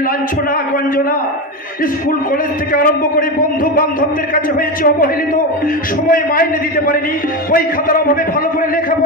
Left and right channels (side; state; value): both; normal; correlation 0.16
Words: লাঞ্ছনা গঞ্জনা। স্কুল কলেজ থেকে আরম্ভ করে বন্ধু বান্ধবদের কাছে হয়েছে অবহেলিত, সময় মাইনে দিতে পারিনি, বই খাতার অভাবে ভালো করে